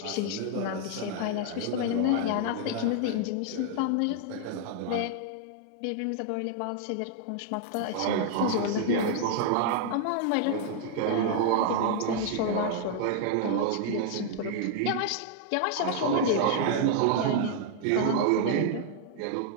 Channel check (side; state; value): both; different; correlation 0.00